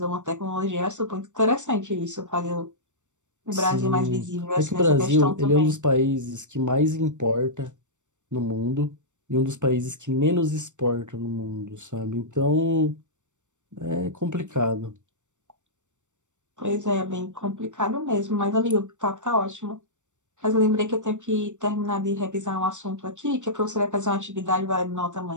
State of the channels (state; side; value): late; left; 0.85 ms